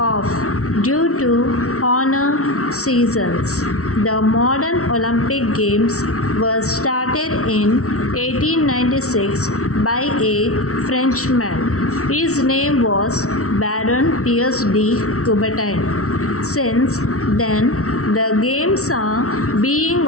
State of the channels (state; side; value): late; right; 0.64 ms